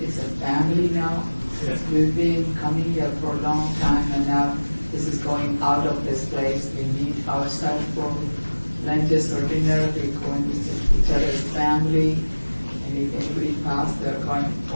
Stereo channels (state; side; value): inverted; both; correlation -1.00